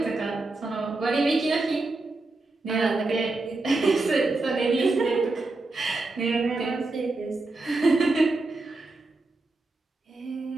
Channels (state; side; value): quieter; left; 3.2 dB